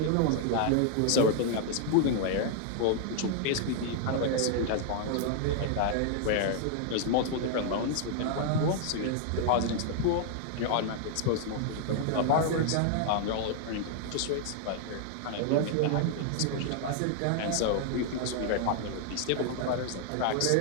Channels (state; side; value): different; both; correlation 0.00